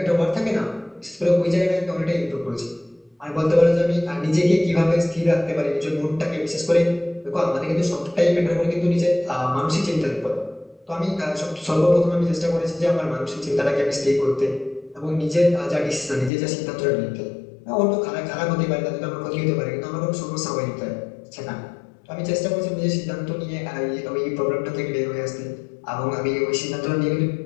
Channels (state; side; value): drops out; right; at 16.3 s